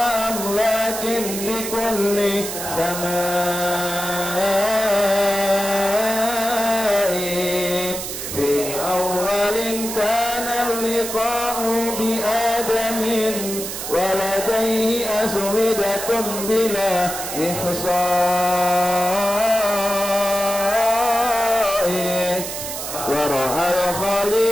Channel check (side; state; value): right; noise; hiss, 6 dB below the sound